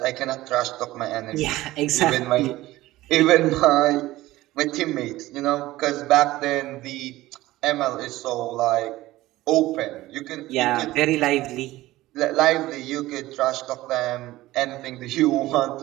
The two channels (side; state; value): left; quieter; 17.1 dB